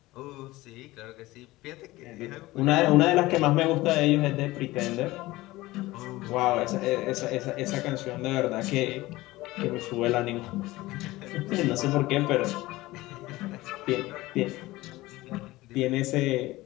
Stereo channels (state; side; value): quieter; right; 18.8 dB